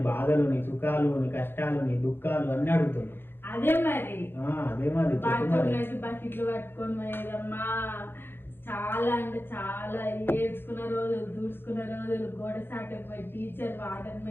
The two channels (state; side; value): late; right; 0.10 ms